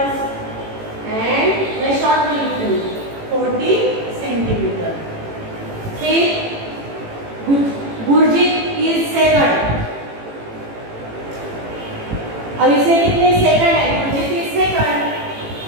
एंड मैं शॉर्ट में लिख रही 40 सेंटीमीटर। फिर गुरजीत इज सेकंड। अब इसे कितने सेकंड है गुरजीत इज सेकंड।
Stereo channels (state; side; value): late; left; 18 ms